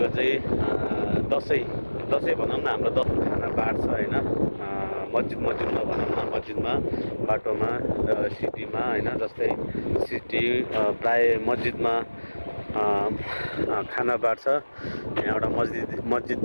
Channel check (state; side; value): inverted; both; correlation -1.00